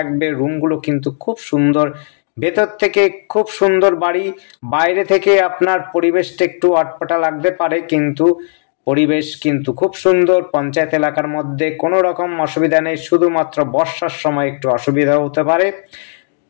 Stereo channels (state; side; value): silent; right; digital silence